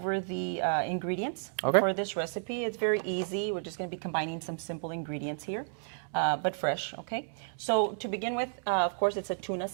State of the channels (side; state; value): left; silent; digital silence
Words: the ingredients for this recipe. It's very easy. We're just going to be combining some simple ingredients here, but fresh, okay? So to begin with, of course, it's a tuna